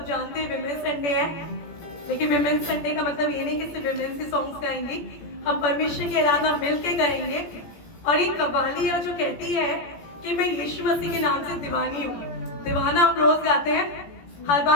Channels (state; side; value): late; right; 17 ms